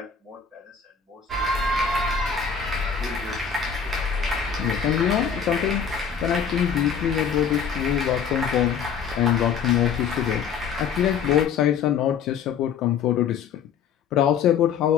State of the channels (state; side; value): quieter; right; 7.1 dB